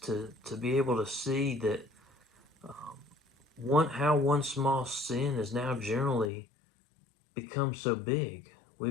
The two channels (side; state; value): right; drops out; at 6.3 s